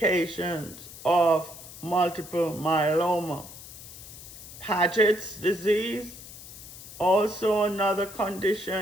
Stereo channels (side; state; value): left; noise; hiss, 15 dB below the sound